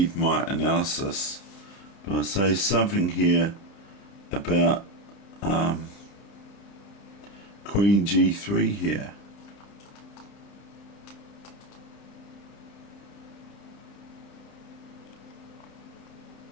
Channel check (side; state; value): right; late; 31 ms